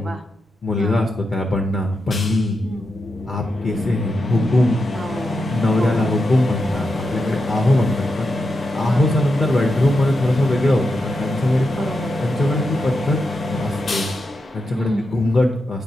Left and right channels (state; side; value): normal; both; correlation 0.87